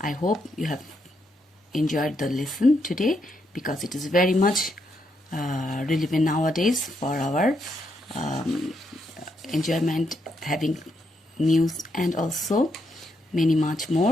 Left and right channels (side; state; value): both; normal; correlation 0.78